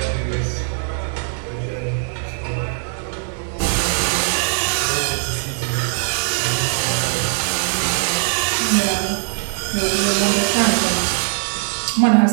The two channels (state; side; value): silent; left; 65 dB below the other